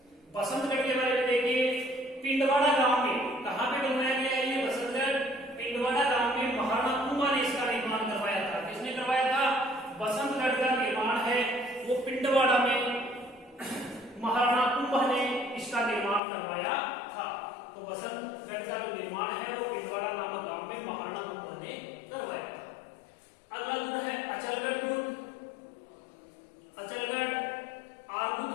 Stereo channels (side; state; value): right; drops out; at 16.2 s